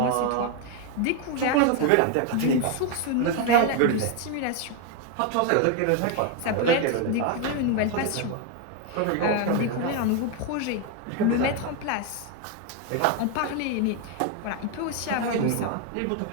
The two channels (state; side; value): different; both; correlation 0.01